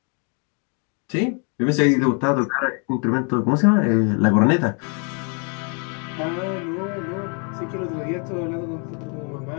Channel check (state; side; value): quieter; right; 37.7 dB